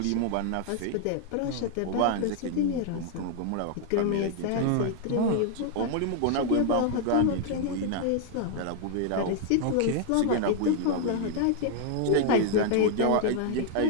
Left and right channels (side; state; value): both; different; correlation 0.00